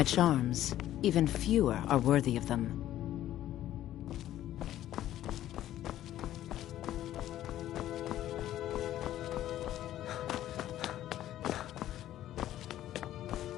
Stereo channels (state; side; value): quieter; right; 12.9 dB